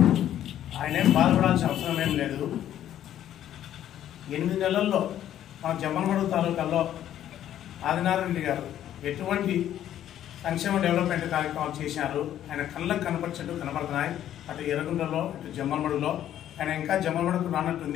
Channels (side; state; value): right; quieter; 11.4 dB